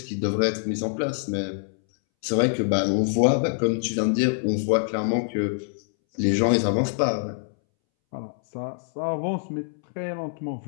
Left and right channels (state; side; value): silent; right; 62 dB below the other